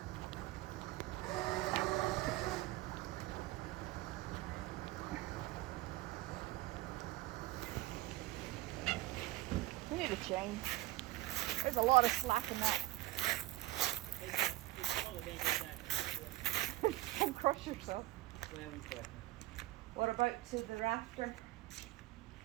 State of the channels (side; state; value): left; quieter; 18.0 dB